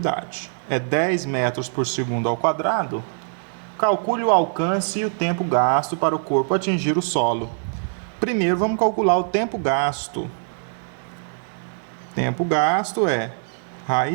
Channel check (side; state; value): left; silent; 63 dB below the other